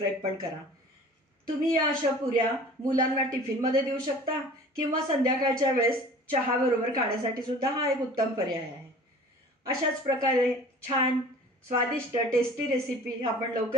पण करा. तुम्ही या अशा पुऱ्या मुलांना टिफिनमध्ये देऊ शकता किंवा संध्याकाळच्या वेळेस चहाबरोबर खाण्यासाठी सुद्धा हा एक उत्तम पर्याय आहे. अशाच प्रकारे छान स्वादिष्ट टेस्टी रेसिपी आपण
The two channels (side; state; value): both; normal; correlation 0.45